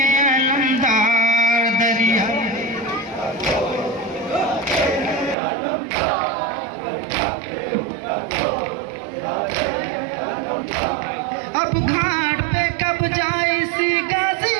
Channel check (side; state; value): left; drops out; at 5.4 s